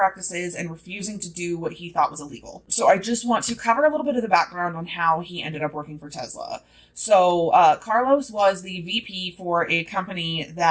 and refusing to do what he thought was illegal. So I just want to cover a little bit of the background on how he ended up working for Tesla. So Carlos was the VP for a company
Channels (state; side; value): identical; both; correlation 1.00